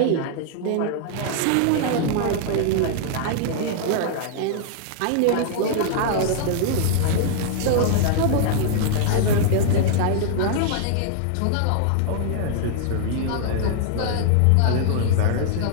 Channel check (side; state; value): both; different; correlation -0.01